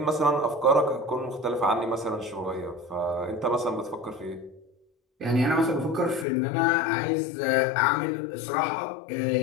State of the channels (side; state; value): right; drops out; at 6.2 s